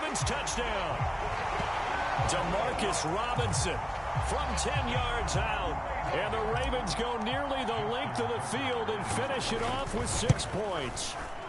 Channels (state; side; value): identical; both; correlation 1.00